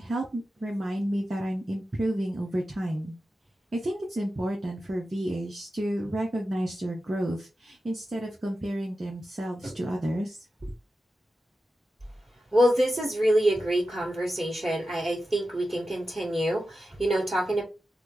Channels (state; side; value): normal; both; correlation 0.92